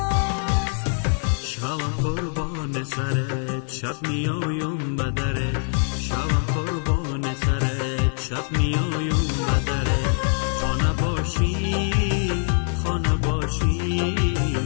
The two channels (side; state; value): right; silent; 63 dB below the other